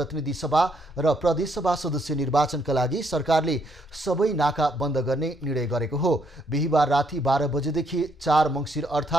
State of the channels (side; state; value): both; normal; correlation 0.72